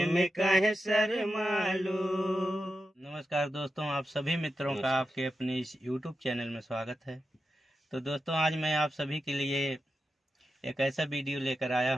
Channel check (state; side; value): normal; both; correlation 0.90